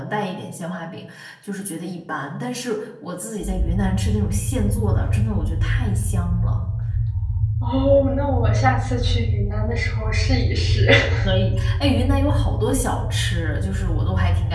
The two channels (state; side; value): identical; both; correlation 1.00